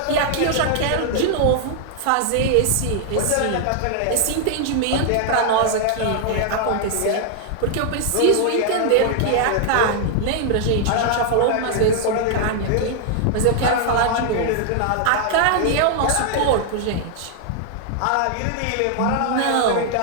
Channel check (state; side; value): different; both; correlation 0.00